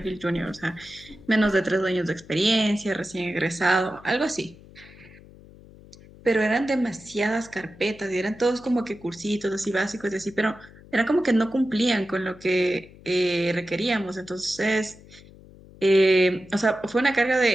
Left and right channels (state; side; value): noise; left; hum, 22 dB below the sound